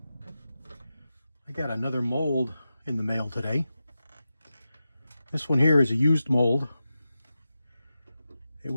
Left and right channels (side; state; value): both; inverted; correlation -0.92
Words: I got another mold in the mail today. This one here is a used mold. It